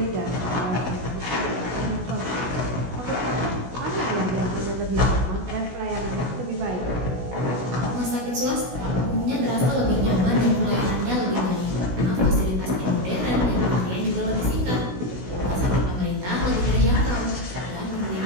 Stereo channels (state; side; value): late; left; 16 ms